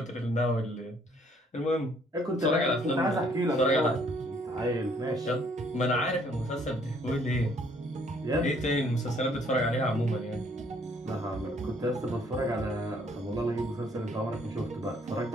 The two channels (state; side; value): normal; both; correlation 0.64